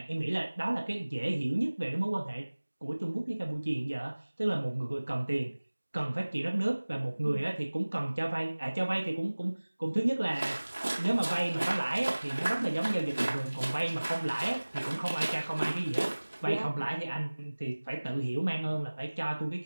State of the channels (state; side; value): inverted; both; correlation -1.00